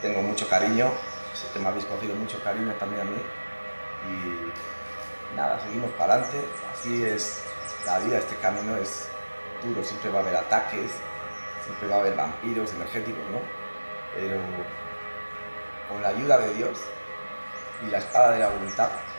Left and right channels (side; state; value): both; inverted; correlation -1.00